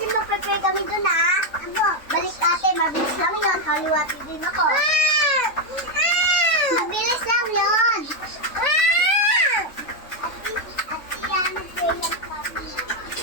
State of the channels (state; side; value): late; right; 3.5 ms